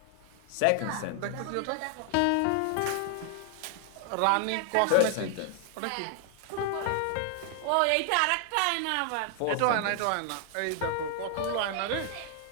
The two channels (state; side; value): different; both; correlation 0.00